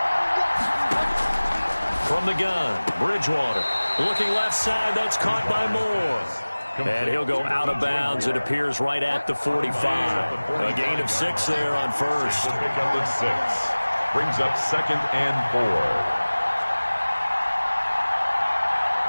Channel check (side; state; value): both; inverted; correlation -1.00